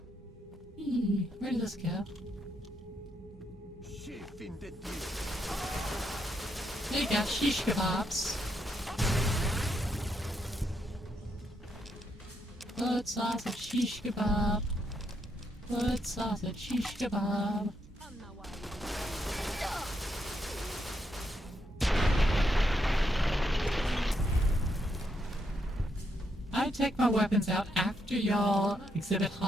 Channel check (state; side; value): normal; both; correlation 0.78